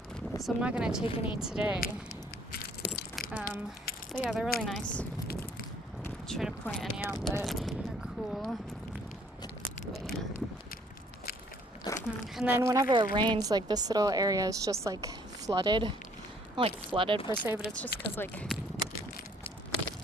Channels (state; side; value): normal; both; correlation 0.61